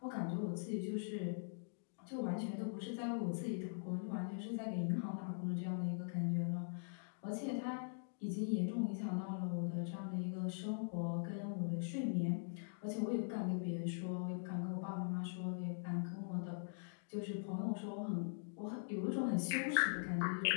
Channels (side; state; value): right; silent; digital silence